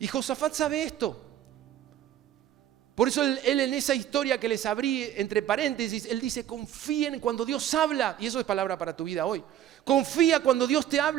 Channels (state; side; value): quieter; left; 11.5 dB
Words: Josafat sabe esto. Por eso él en esa historia que les abrí entre paréntesis, él dice, confíen cuando Dios habla. Y eso es palabra para tu vida hoy. Confía cuando Dios te